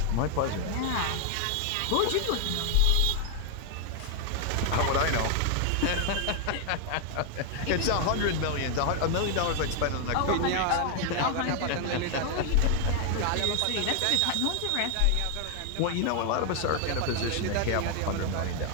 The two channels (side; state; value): both; different; correlation 0.00